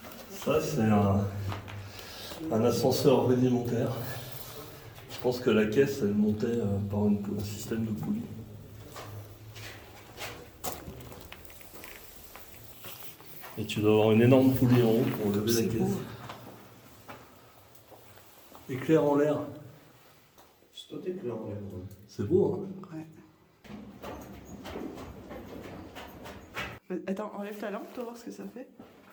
Ça c'est un ascenseur rudimentaire. Je pense que la caisse elle montait par un système de poulie. Et tu dois avoir une énorme poulie en haut pour lever la C'est caisse. beau. Éclair en l'air. C'est toi éclair en l'air. C'est beau hein. Ouais. Attends, enlève ta lampe, pour voir ce que ça fait.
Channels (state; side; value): identical; both; correlation 1.00